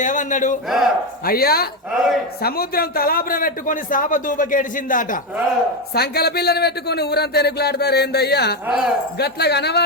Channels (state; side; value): normal; both; correlation 0.10